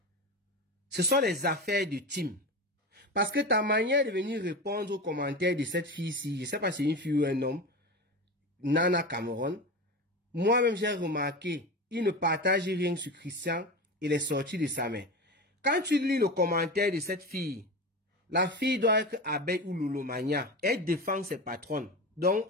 Ce sont les affaires de team. Parce que ta manière de venir répondre aux commentaires de cette fille-ci, je ne sais pas si c'est une fille ou un homme, Nana Cameroun, moi-même j'ai remarqué, il ne partage rien sur Christian et les sorties de sa main. Quand tu lis le commentaire de cette fille, la fille doit être abeille ou loulomania. Elle défend ses patronnes. Donc,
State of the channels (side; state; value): both; normal; correlation 0.25